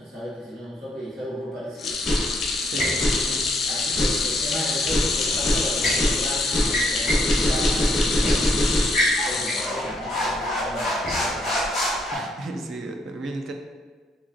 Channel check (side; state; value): both; normal; correlation 0.72